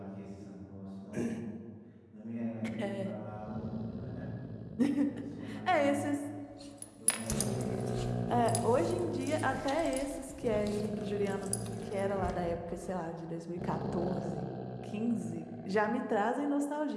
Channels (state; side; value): identical; both; correlation 1.00